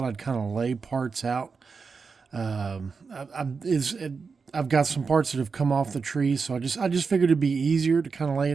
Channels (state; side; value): quieter; left; 5.1 dB